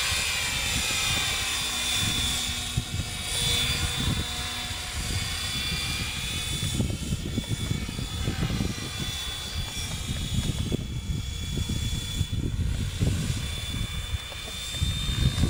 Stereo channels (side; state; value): both; identical; correlation 1.00